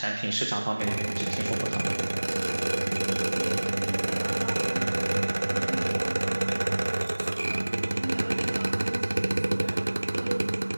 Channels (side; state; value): both; inverted; correlation -1.00